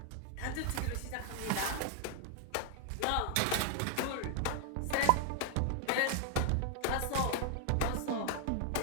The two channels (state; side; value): different; both; correlation -0.01